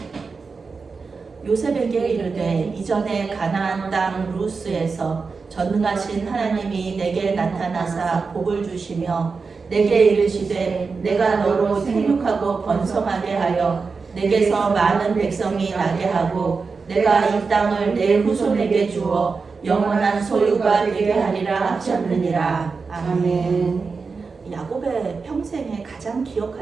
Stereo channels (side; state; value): left; quieter; 4.7 dB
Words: 요셉에게 이르되 이전에 가나안 땅 루스에서 전능하신 하나님이 내게 나타나사 복을 주시며 내게 이르시되 내가 너로 생육하고 번성하게 하여 내게서 많은 백성이 나게 하고 내가 이 땅을 내 후손에게 주어 영원한 소유가 되게 하리라 하셨느니라. 아멘. 야곱의 평생에 가장